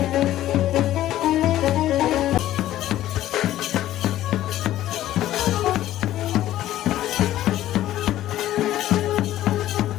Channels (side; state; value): right; quieter; 13.6 dB